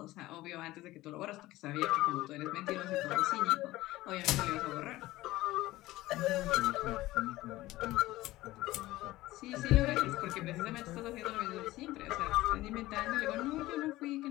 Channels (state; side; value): quieter; right; 17.5 dB